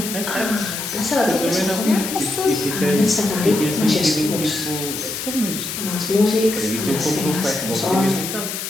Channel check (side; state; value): left; noise; hiss, 5 dB below the sound